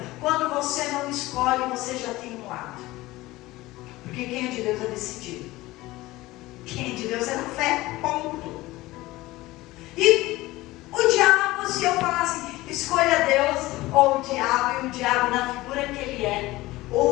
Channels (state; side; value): quieter; right; 18.8 dB